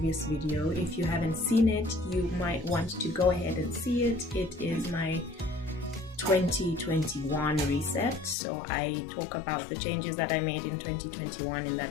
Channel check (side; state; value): right; drops out; at 8.3 s